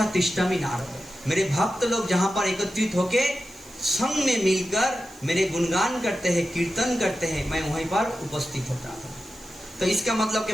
तिष्ठामि नारद। मेरे भक्त लोग जहाँ पर एकत्रित होके संग में मिलकर मेरे गुणगान करते हैं, कीर्तन करते हैं, मैं वहीं पर उपस्थित होता हूँ। तो इसका मतलब कि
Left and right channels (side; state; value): right; noise; hiss, 25 dB below the sound